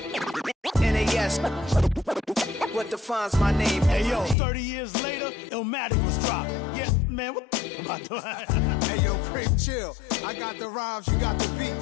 NAS. What defines my name? Hey yo, 30 years later, Illmatic was dropped. Yeah, man, what about that? Hey yo, Creep, chill. I got the rhymes, you got the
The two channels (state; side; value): drops out; right; at 4.4 s